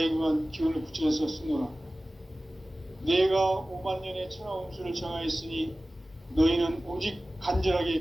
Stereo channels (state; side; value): normal; both; correlation 0.97